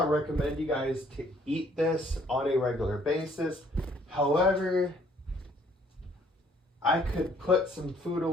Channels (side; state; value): both; normal; correlation 0.62